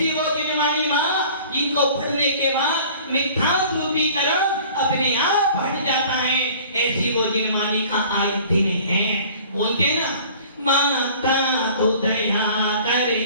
वो जिनवानी माँ जिनको पढ़ने के बाद मिथ्यात्व रूपी कर्म अपने आप हट जाता है। ऐसी वो जिनवानी का आज दिन है। बोलते ना, माता तू दया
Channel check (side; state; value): both; inverted; correlation -0.48